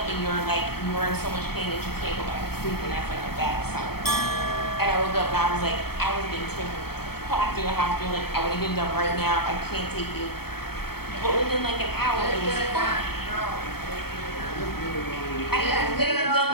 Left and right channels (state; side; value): late; right; 0.95 ms